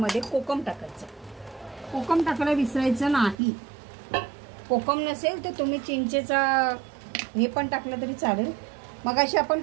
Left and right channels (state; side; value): drops out; left; at 3.4 s